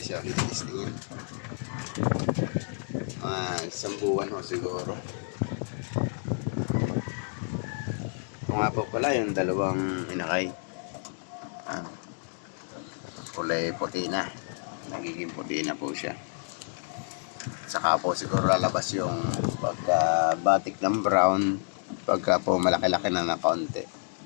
siya ulit testingin. Mga isang buwan ho siguro. Ito nga po pala yung dalawang inakay. Kulay puti na, nagiging puti na po siya. Saka po siguro lalabas yung pagka batik ng brown pagka po malaki-laki na na kaunti.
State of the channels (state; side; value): silent; right; 58 dB below the other